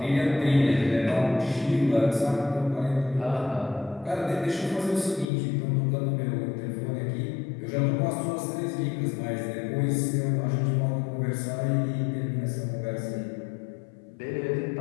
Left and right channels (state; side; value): drops out; right; at 5.2 s